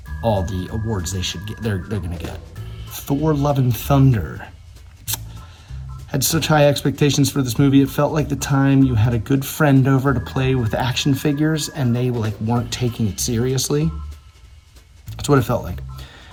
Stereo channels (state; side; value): identical; both; correlation 1.00